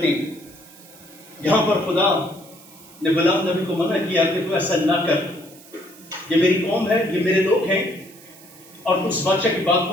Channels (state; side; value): noise; right; hiss, 22 dB below the sound